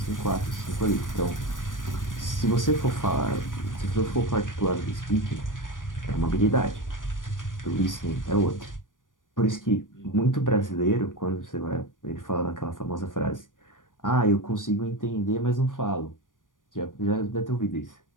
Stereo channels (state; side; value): late; right; 0.88 ms